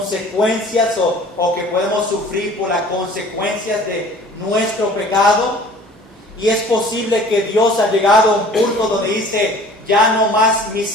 o que podemos sufrir por las consecuencias de nuestro pecado? Y es posible que Dios ha llegado a un punto donde dice, ya no más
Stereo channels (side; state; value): both; normal; correlation 0.48